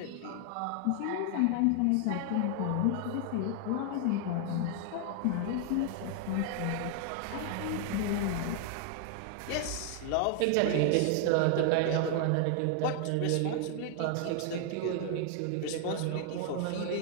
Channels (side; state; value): both; different; correlation 0.00